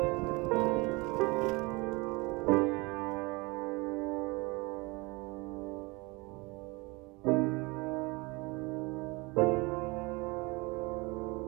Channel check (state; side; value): quieter; left; 25.8 dB